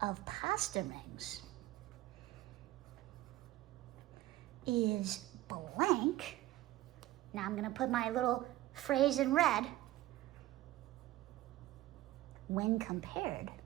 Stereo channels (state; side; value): quieter; left; 16.0 dB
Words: of pasta rings is blank. Now I'm going to put my little phrase in red. When compared